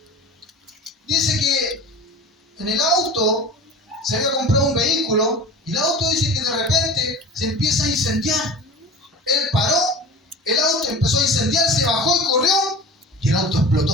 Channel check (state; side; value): normal; both; correlation 0.37